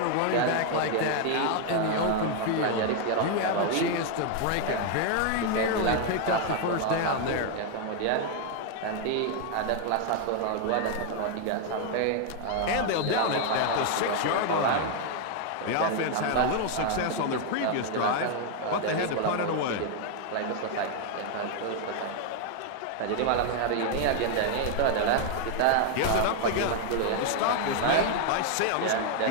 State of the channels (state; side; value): different; both; correlation 0.00